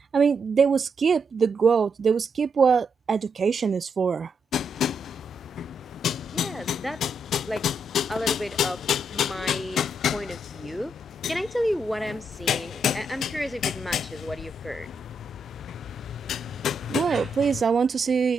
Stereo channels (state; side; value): normal; both; correlation 0.80